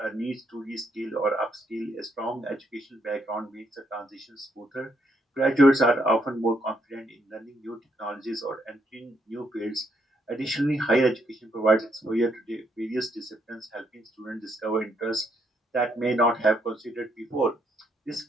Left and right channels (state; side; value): normal; both; correlation 0.74